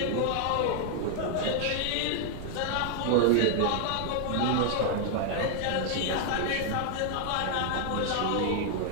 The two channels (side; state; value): both; different; correlation 0.00